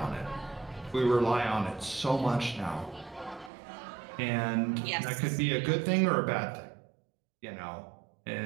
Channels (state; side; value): drops out; left; at 3.5 s